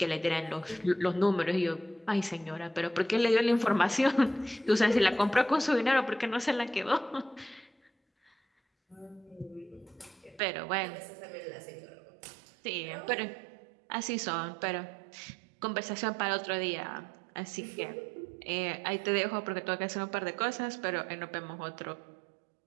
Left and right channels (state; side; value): drops out; left; at 10.4 s